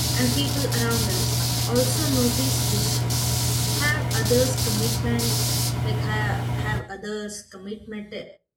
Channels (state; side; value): identical; both; correlation 1.00